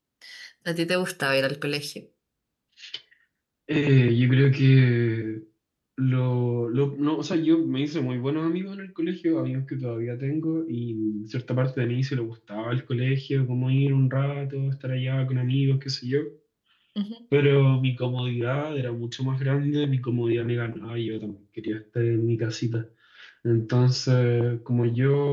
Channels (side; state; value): both; identical; correlation 1.00